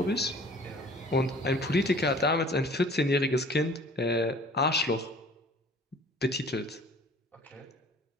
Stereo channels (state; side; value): normal; both; correlation 0.49